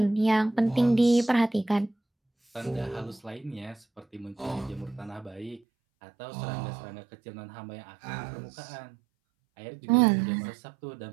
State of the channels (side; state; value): left; drops out; at 5.6 s